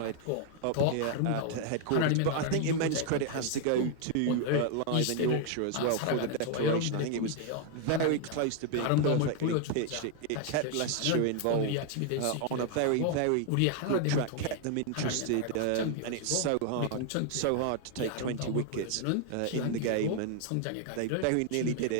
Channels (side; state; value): both; different; correlation 0.00